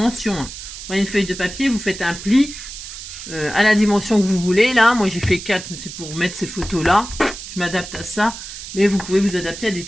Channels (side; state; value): right; noise; hiss, 11 dB below the sound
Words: Hein. Vous prenez une feuille de papier, vous faites un pli à la dimension que vous voulez. Là, moi, j'ai fait 4, mais c'est pour mettre ces photos-là. Je m'adapte à ça. Mais vous pouvez vous adapter à des